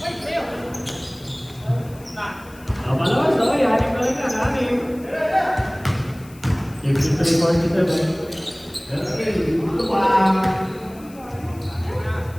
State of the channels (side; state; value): left; noise; hiss, 24 dB below the sound